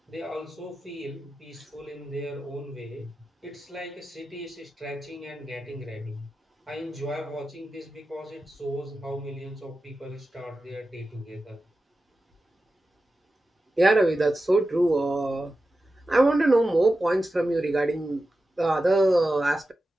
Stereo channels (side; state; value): both; normal; correlation 0.92